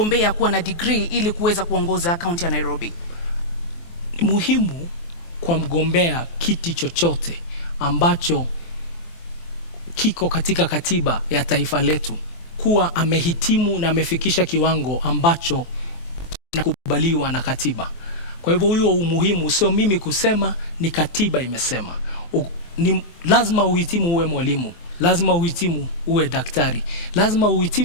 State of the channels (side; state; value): right; late; 23 ms